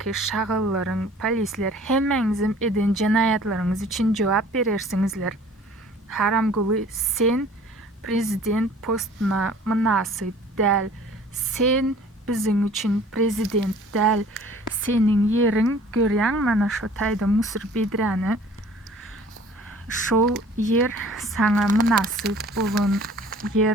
şagallaryň, polisler hemmeňizim eden jenaýatlaryňyz üçin jogap berersiňizler. Haram guly sen prezident postuna münasip däl. Sen biziň üçin prezident däl. Seniň ýeriň görýäň mana şo taýda Musur Bedräni. Şol yer saňa münasip bolan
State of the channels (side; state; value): both; normal; correlation 0.50